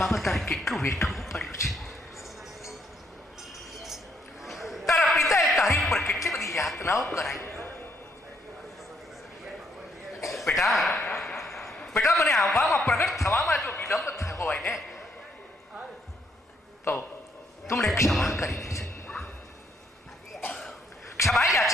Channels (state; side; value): normal; both; correlation 0.72